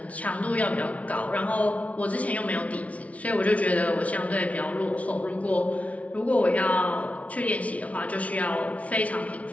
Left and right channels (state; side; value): late; right; 0.066 ms